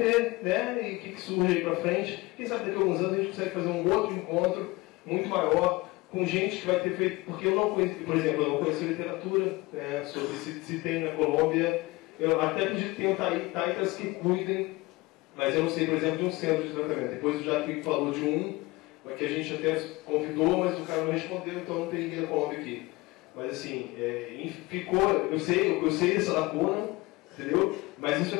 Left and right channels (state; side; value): quieter; right; 22.1 dB